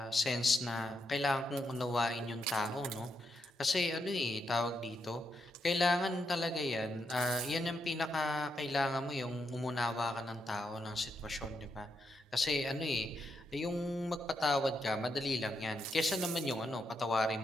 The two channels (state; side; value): normal; both; correlation 0.82